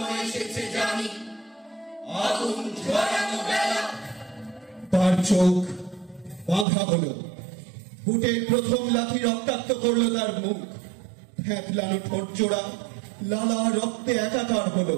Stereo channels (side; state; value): left; drops out; at 6.7 s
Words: এসেছে জানি আগুন ঝরানো বেলা। তার চোখ বাঁধা হলো, বুটের প্রথম লাথি রক্তাক্ত করলো তার মুখ। ফ্যাঁকলানো ঠোঁট জোড়া লালা রক্তে একাকার হলো।